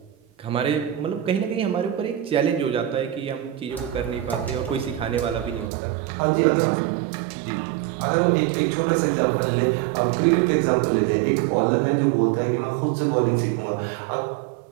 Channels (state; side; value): drops out; left; at 5.7 s